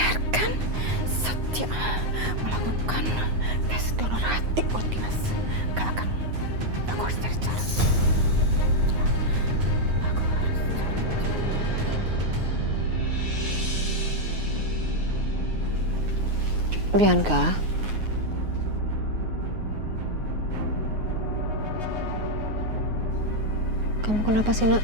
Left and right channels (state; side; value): late; left; 9.5 ms